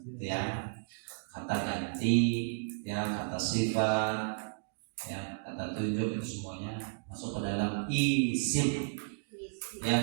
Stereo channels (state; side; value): silent; left; digital silence